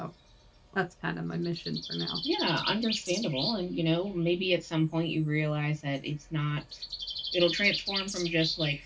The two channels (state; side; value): identical; both; correlation 1.00